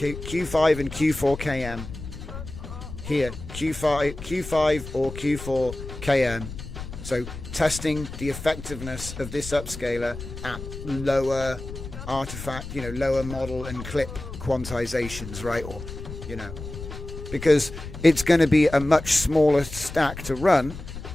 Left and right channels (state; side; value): noise; left; rumble, 11 dB below the sound